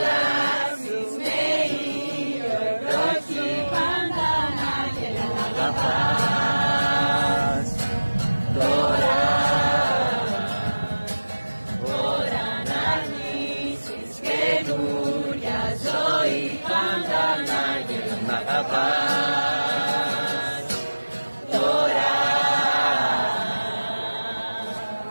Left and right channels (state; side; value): inverted; both; correlation -1.00